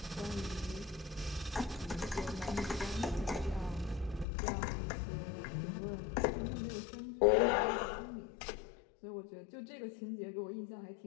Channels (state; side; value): drops out; right; at 4.2 s